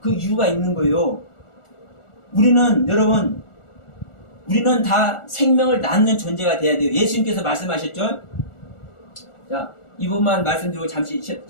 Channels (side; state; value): right; late; 1.4 ms